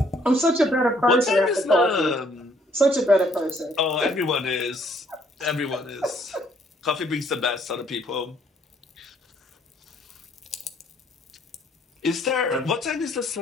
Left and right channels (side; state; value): both; normal; correlation 0.64